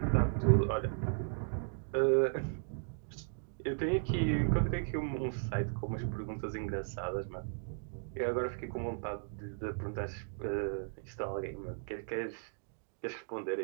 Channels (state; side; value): silent; left; digital silence